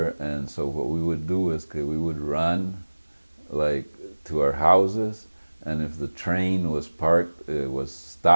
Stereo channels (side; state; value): both; inverted; correlation -1.00